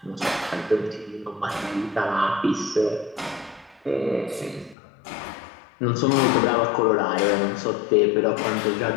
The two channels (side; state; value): right; drops out; at 4.8 s